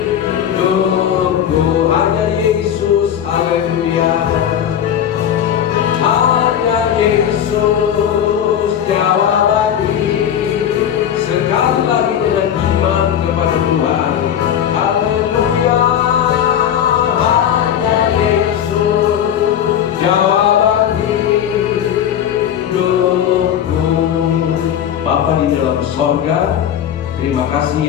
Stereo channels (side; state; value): right; quieter; 9.6 dB